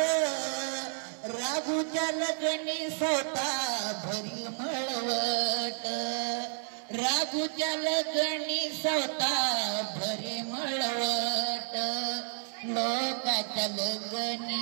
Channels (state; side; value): silent; left; digital silence